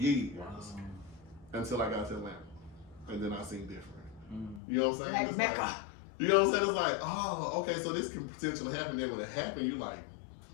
until I got to Atlanta. And then I seen different. You know what I'm saying? Like Mecca. You know what I'm saying? It's like, oh, okay, so this can potentially happen. Then when it happened, you like,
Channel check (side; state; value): right; drops out; at 4.6 s